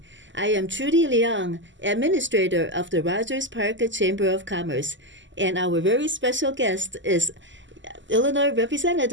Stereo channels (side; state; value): left; late; 0.54 ms